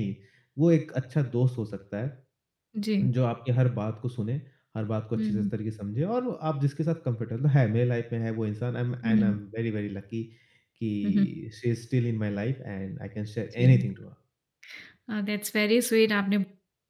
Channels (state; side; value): identical; both; correlation 1.00